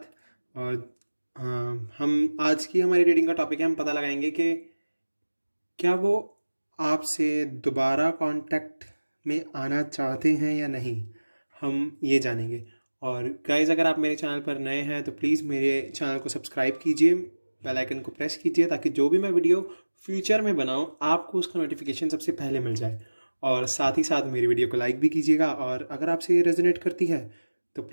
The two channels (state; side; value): inverted; both; correlation -1.00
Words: और हम आज की हमारी रीडिंग का टॉपिक है, हम पता लगाएंगे कि क्या वो आपसे दोबारा कांटेक्ट में आना चाहते हैं या नहीं। हम ये जानेंगे। और गाइज़, अगर आप मेरे चैनल पर नए हैं तो प्लीज़ मेरे चैनल को सब्सक्राइब कीजिए, बेल आइकन को प्रेस कीजिए ताकि जो भी मैं वीडियो फ्यूचर में बनाऊं आपको उसका नोटिफिकेशन सबसे पहले मिल जाए। और साथ ही साथ मेरी वीडियो को लाइक भी कीजिएगा, और अगर आपसे ये रेजोनेट करती है तो